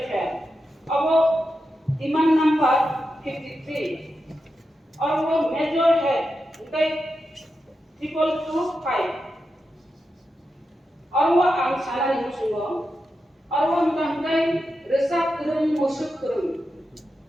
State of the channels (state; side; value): normal; both; correlation 0.88